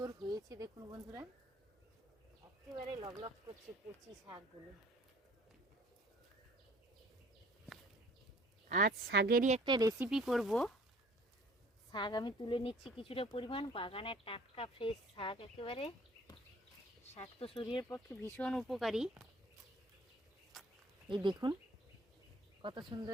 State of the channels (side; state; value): both; normal; correlation 0.54